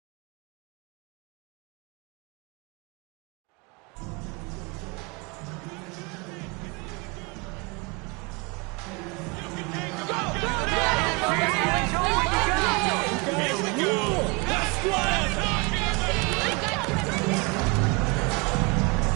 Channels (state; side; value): quieter; left; 29.2 dB